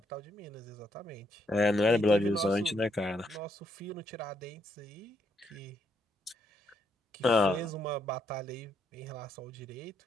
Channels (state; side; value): normal; both; correlation 0.75